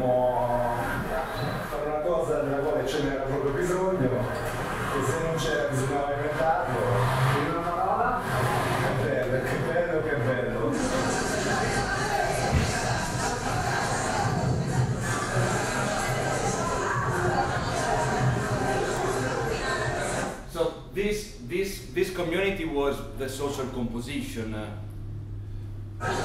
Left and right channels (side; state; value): both; identical; correlation 1.00